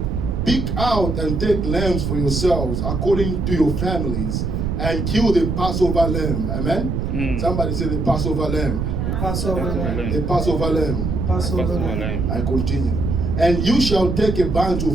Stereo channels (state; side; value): noise; right; rumble, 1 dB below the sound